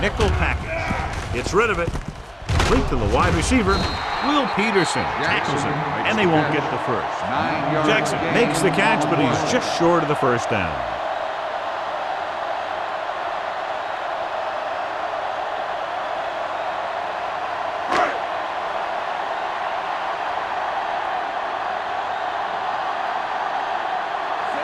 package. Gets rid of it. Complete to the wide receiver. Will Peterson tackles him, and they won't get the first. Jackson makes the catch, but he's just short of the first down.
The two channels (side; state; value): both; identical; correlation 1.00